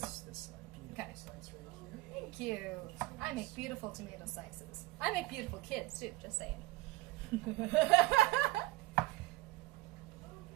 beautiful Okay. slice right here. Thank you. I make beautiful tomato slices. I make beautiful kids too. Just saying.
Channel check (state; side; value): quieter; left; 19.0 dB